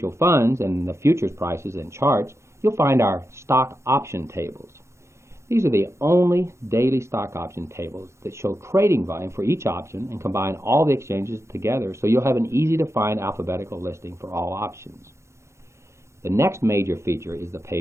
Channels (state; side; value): late; left; 0.13 ms